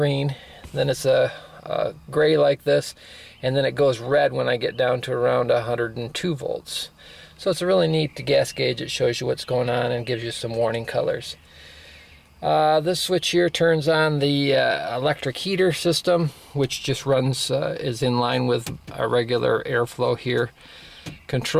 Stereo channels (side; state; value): both; identical; correlation 1.00